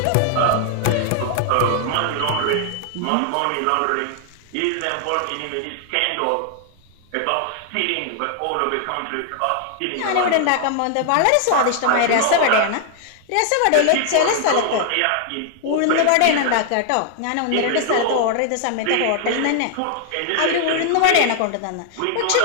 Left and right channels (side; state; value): both; different; correlation 0.00